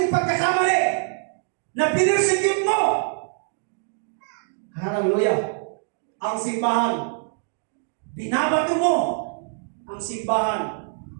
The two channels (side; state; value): left; silent; digital silence